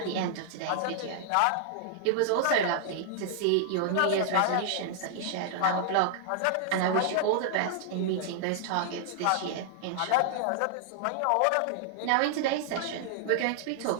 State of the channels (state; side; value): different; both; correlation -0.01